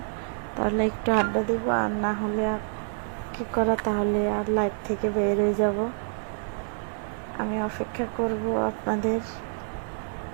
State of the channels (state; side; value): silent; left; 60 dB below the other